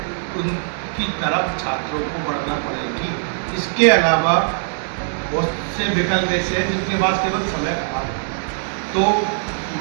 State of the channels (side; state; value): left; silent; digital silence